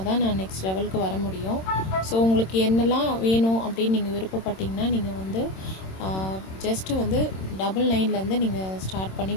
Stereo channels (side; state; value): right; late; 26 ms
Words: தான் நான் நெக்ஸ்ட் லெவலுக்கு வர முடியும். ஸோ உங்களுக்கு என்னெல்லாம் வேணும் அப்படின்னு நீங்கள் விருப்பப்பட்டீங்கன்னா நீங்கள் ஜஸ்ட்டு 99லேருந்து நீங்கள் ஸ்டார்ட் பண்ணி